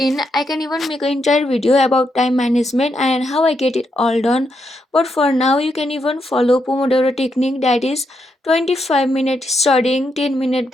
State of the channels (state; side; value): normal; both; correlation 0.81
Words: I can even make an entire video about time management and how I get it all done. But for now, you can even follow Pomodoro technique, that is 25-minute studying, 10-minute